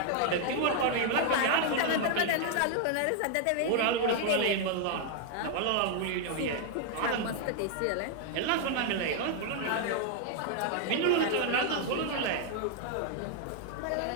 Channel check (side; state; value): both; different; correlation 0.00